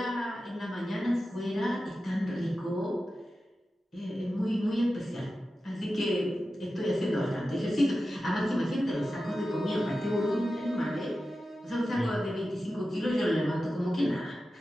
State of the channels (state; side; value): normal; both; correlation 0.93